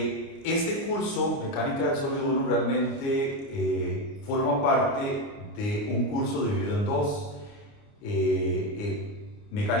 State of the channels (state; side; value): late; right; 29 ms